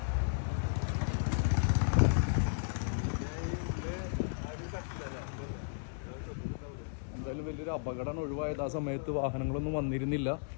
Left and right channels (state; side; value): silent; right; digital silence